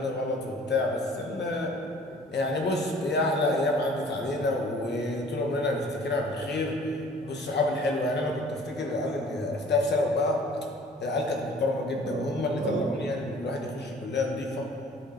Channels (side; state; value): both; normal; correlation 0.51